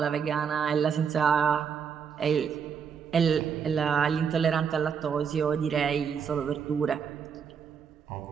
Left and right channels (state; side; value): quieter; left; 6.9 dB